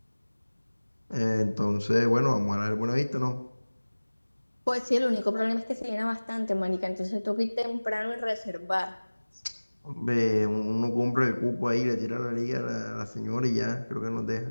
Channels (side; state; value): both; inverted; correlation -1.00